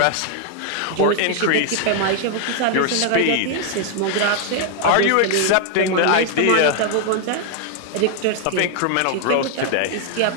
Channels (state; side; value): different; both; correlation 0.00